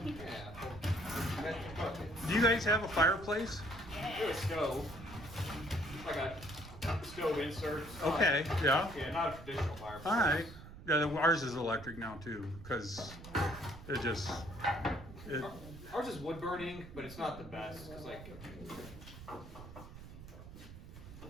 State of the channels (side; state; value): right; noise; rumble, 14 dB below the sound